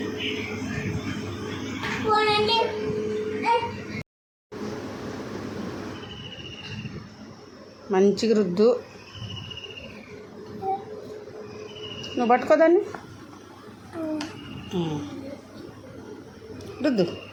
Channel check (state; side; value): identical; both; correlation 1.00